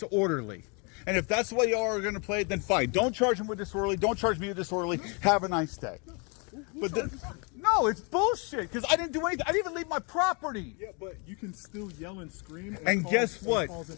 And if that's the way y'all are going to play it, then fine. Don't charge him with disorderly. Don't charge me with disorderly. Have a nice day. But no, it's bullshit, because I didn't do anything. I didn't even leave my property. Yeah, but you can still yell and scream. And guess what?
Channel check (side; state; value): right; quieter; 33.4 dB